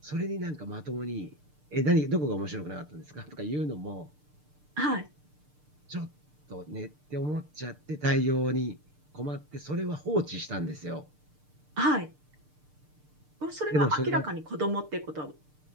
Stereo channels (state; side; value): late; left; 6.7 ms